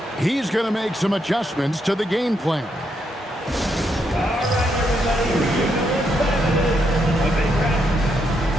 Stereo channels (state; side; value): normal; both; correlation 0.79